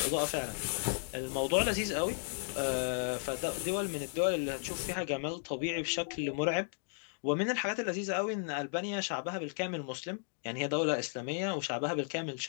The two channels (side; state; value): right; silent; digital silence